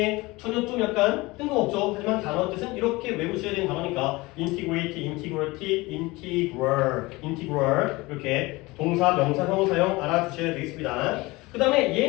전혀 좀 약간 뜬금없죠. 하지만 단어 뜻은 이렇게 외우셔야 되는 단어니까 integrate, integrity, integral 이렇게 동사, 명사, 형용사형 알아두셔야 되겠습니다. 그 다음에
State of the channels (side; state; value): right; quieter; 22.1 dB